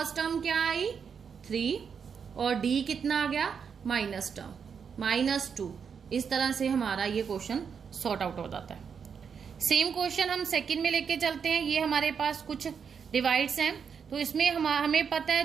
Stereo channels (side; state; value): left; quieter; 6.6 dB